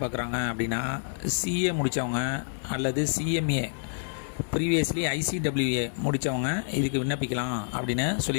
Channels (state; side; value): silent; right; digital silence